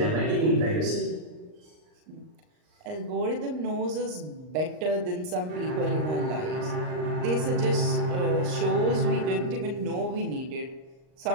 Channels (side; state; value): left; late; 39 ms